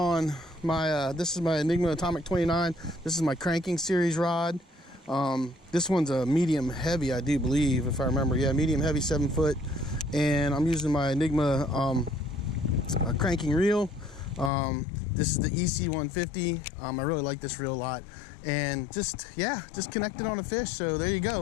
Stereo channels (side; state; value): right; drops out; at 14.5 s